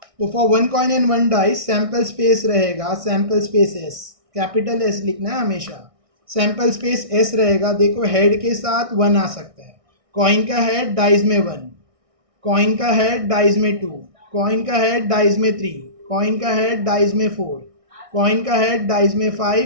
तो for 1 coin and 1 dice sample space रहेगा, sample space S, capital S लिखना है हमेशा, सैंपल स्पेस एस रहेगा। देखो हेड के साथ 1 आ सकता है, कॉइन का हेड डाइस में 1, कॉइन का हेड डाइस में 2, कॉइन का हेड डाइस में 3, कॉइन का हेड डाइस में 4, कॉइन का हेड डाइस में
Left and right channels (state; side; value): late; left; 1.6 ms